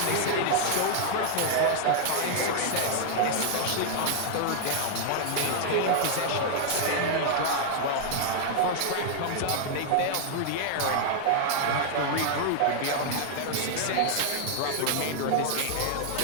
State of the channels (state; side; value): different; both; correlation 0.00